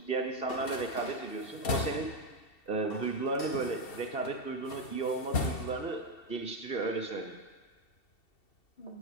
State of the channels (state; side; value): late; right; 2.7 ms